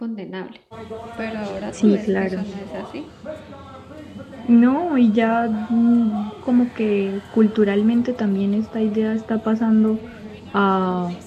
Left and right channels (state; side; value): identical; both; correlation 1.00